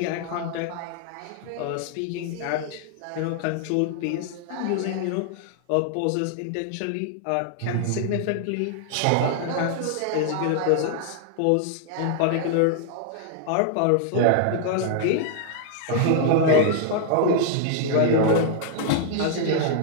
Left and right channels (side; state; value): both; different; correlation 0.00